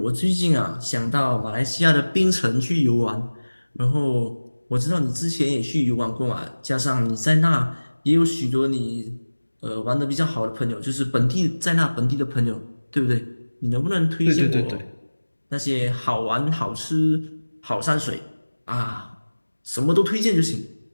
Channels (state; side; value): inverted; both; correlation -1.00